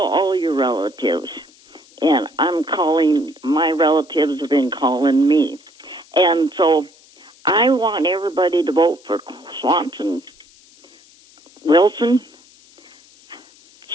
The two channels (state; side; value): noise; left; hiss, 27 dB below the sound